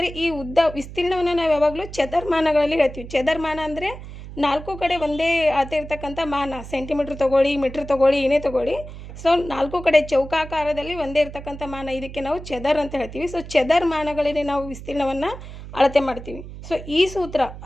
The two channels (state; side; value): noise; right; hum, 13 dB below the sound